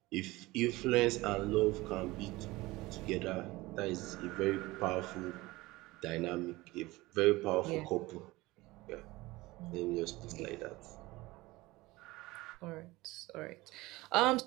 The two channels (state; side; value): quieter; left; 20.3 dB